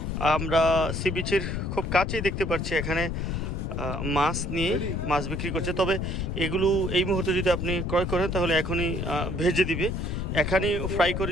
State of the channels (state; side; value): noise; left; rumble, 2 dB below the sound